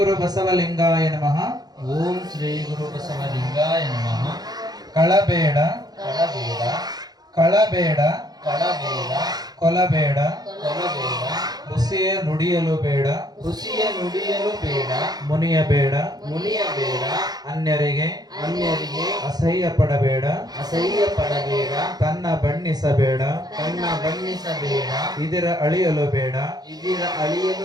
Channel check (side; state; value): left; late; 0.19 ms